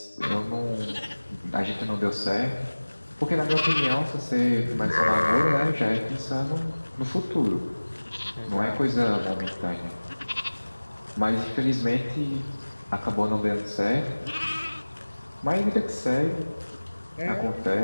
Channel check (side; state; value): both; inverted; correlation -1.00